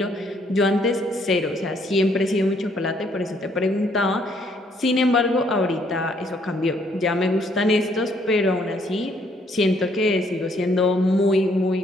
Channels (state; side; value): normal; both; correlation 0.67